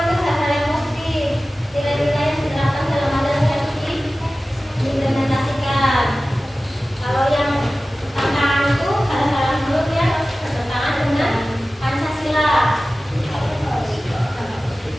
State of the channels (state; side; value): normal; both; correlation 0.96